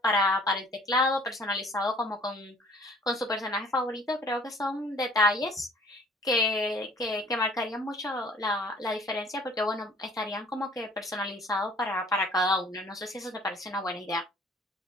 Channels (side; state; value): both; normal; correlation 0.54